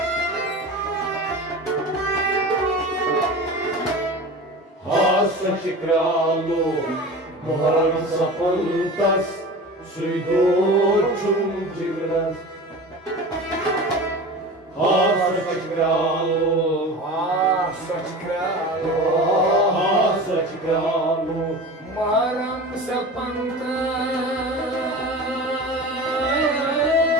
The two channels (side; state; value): both; normal; correlation 0.33